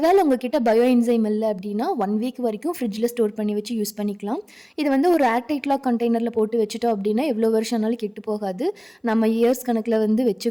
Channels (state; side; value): identical; both; correlation 1.00